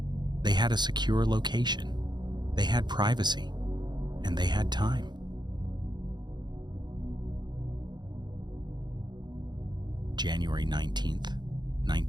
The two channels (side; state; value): left; late; 0.21 ms